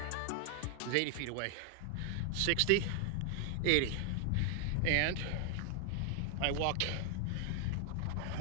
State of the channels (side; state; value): both; different; correlation 0.00